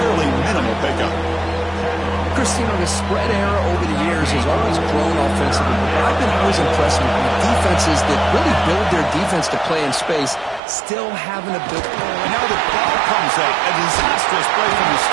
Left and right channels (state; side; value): drops out; left; at 10.6 s